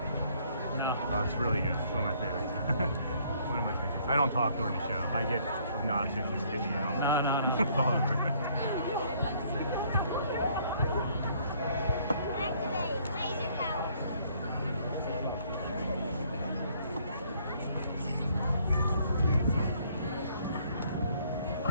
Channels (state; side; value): inverted; both; correlation -0.63